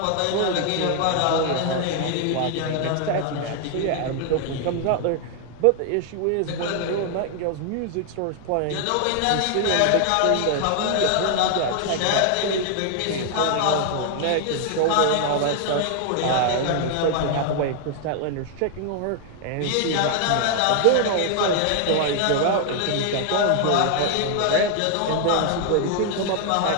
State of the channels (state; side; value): different; both; correlation 0.00